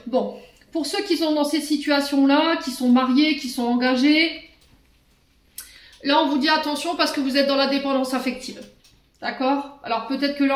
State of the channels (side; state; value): both; identical; correlation 1.00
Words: Bon, pour ceux qui sont dans ces situations-là, qui sont mariés, qui sont engagés, là, on vous dit attention parce que vous êtes dans la dépendance affective. D'accord? Alors, peut-être que là,